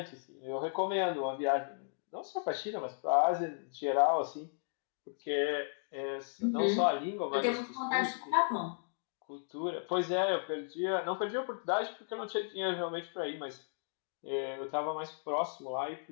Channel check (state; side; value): silent; right; digital silence